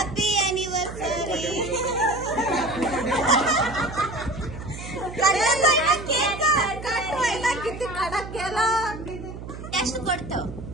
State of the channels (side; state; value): right; noise; hum, 11 dB below the sound